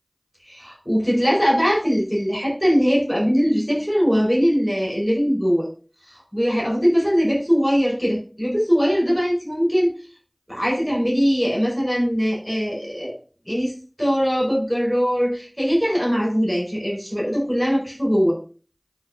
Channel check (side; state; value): both; identical; correlation 1.00